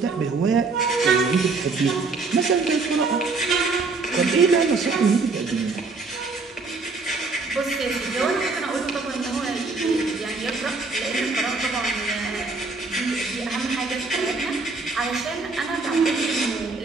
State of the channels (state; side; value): quieter; left; 4.0 dB